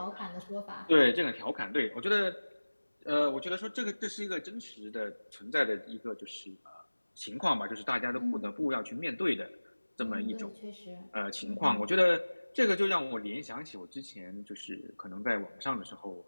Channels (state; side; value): inverted; both; correlation -1.00